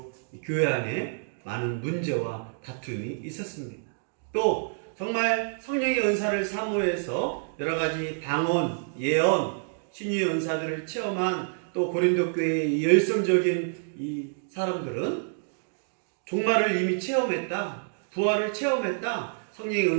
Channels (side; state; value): left; silent; digital silence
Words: 교회 안에 많은 문제와 다툼이 있었습니다. 또 정말 성령의 은사를 사모해서 여러 가지 방언, 예언, 신유의 은사들을 체험한 또 고린도 교회의 열성적인 이 사람들은 종말을 이미 체험했다, 부활을 체험했다. 성령의